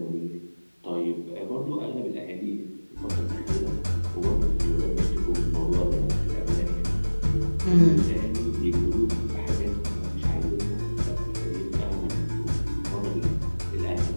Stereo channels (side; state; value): both; inverted; correlation -1.00